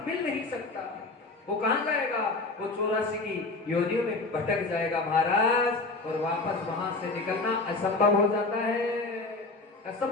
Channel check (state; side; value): quieter; right; 3.4 dB